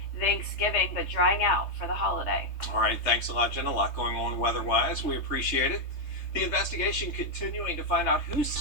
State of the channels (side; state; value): right; late; 3.3 ms